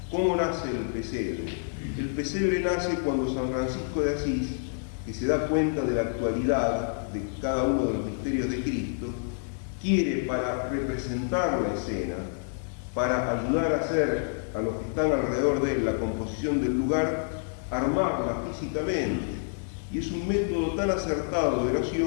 ¿Cómo nace el pesebre? El pesebre nace cuando San Francisco de Asís, que se da cuenta de la actualidad de cada uno de los misterios de Cristo, quiere, para representar la escena, para ayudar a hacer a los que están alrededor de él la composición del lugar, armarla físicamente. Y es un método tan acertado de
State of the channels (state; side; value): silent; right; digital silence